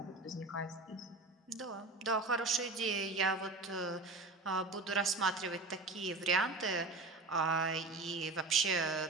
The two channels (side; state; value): left; quieter; 3.4 dB